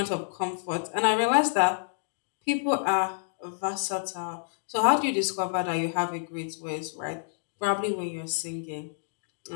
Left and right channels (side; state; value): right; silent; digital silence